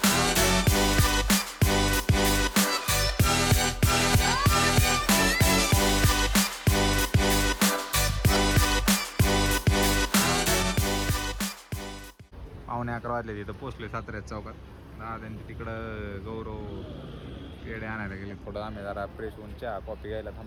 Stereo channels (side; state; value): both; identical; correlation 1.00